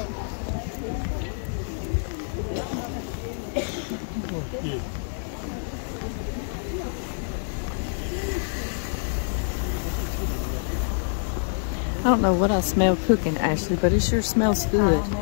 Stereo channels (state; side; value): silent; right; digital silence